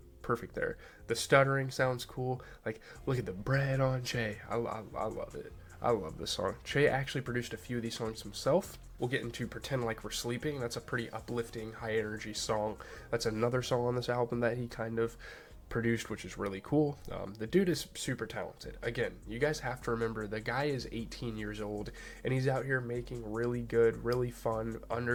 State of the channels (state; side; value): identical; both; correlation 1.00